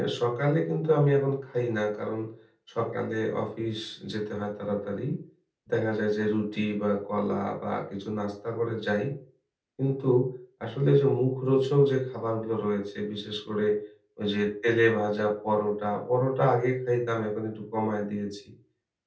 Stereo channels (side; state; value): both; identical; correlation 1.00